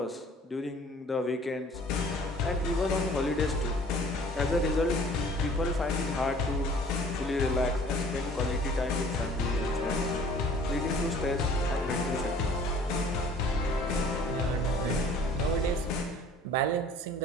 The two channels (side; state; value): both; normal; correlation 0.51